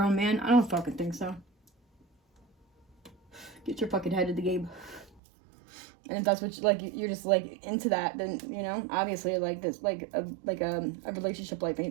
man, I don't fucking think so. Get your fucking head in the game. And if that's what you're just like into that, then, you know, obviously, like, this, like a relationship like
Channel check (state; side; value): drops out; left; at 5.2 s